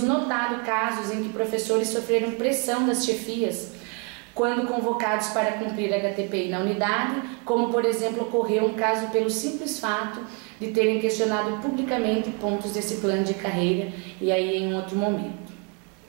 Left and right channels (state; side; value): quieter; left; 33.7 dB